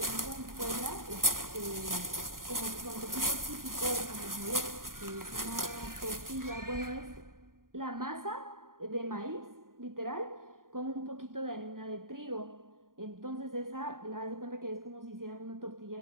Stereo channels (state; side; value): late; left; 0.91 ms